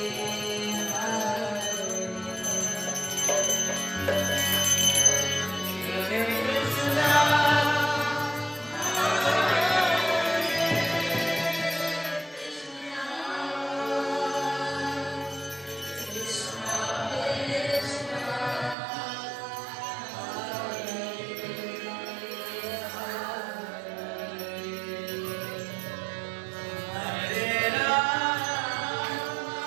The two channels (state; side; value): drops out; left; at 18.8 s